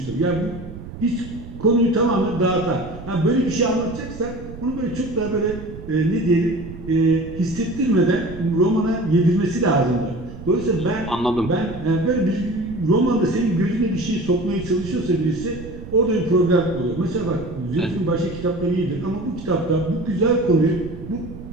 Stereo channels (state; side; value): noise; right; rumble, 13 dB below the sound